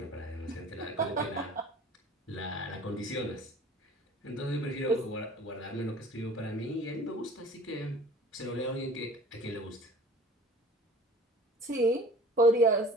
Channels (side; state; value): both; normal; correlation 0.45